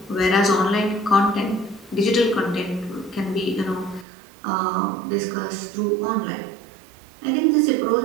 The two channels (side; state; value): left; drops out; at 4.0 s